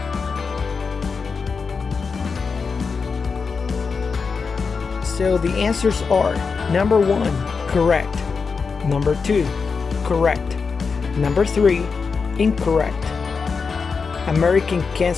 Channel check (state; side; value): quieter; right; 5.1 dB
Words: So the answers are: number 1, correct; number 2, correct; number 3, incorrect. American